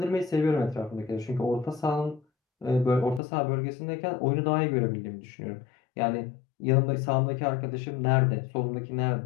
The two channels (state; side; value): drops out; right; at 3.2 s